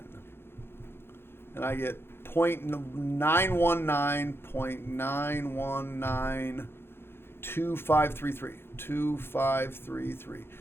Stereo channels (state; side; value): late; right; 0.11 ms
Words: And I get 0.919.9192533. 2533.